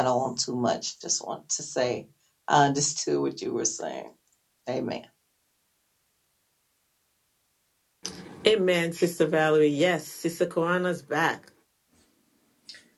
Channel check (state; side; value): identical; both; correlation 1.00